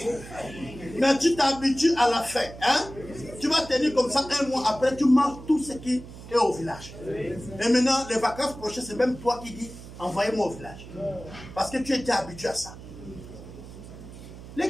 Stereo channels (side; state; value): right; noise; hum, 15 dB below the sound